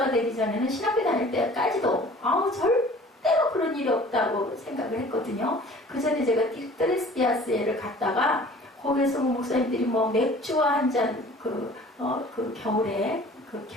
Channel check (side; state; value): both; normal; correlation 0.48